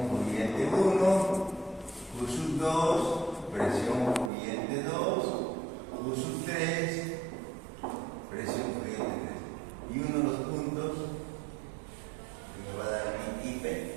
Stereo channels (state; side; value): drops out; left; at 4.3 s